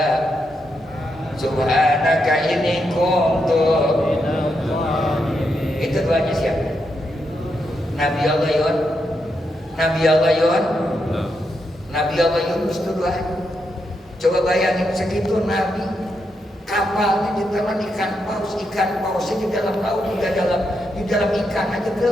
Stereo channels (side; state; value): both; normal; correlation 0.82